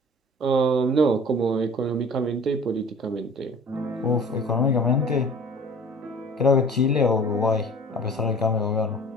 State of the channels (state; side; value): normal; both; correlation 0.46